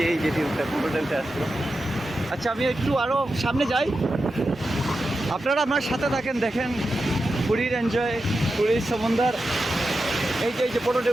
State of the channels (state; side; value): normal; both; correlation 0.90